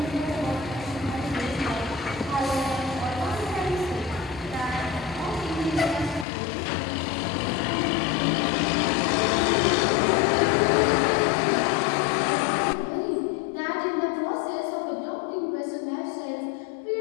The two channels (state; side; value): drops out; right; at 6.2 s